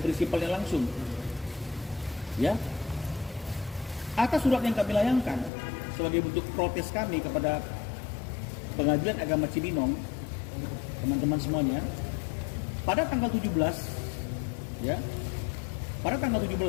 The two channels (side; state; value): right; drops out; at 5.5 s